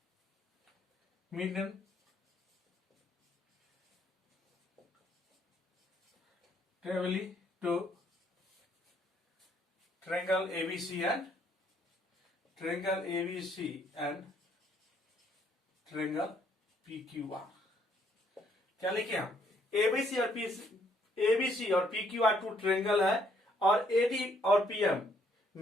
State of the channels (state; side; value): normal; both; correlation 0.68